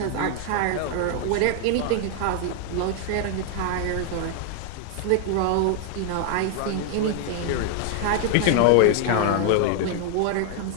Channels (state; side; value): different; both; correlation 0.00